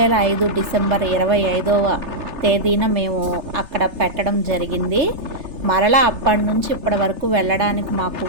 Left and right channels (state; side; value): late; left; 3.3 ms